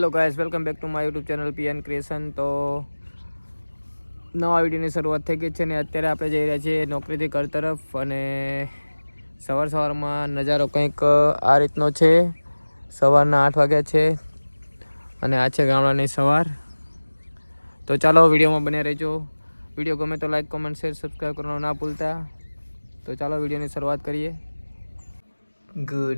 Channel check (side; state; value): both; inverted; correlation -1.00